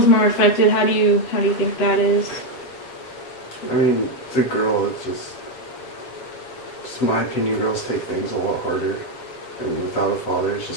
more affected. How do you think that is? I mean, it's a girl, it's just my opinion, girls take things a lot harder. I mean, without a father, it's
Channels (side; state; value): right; late; 8.0 ms